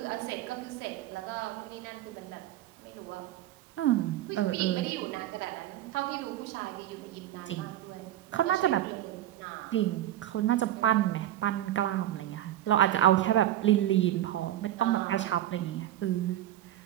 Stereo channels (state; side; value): quieter; left; 13.0 dB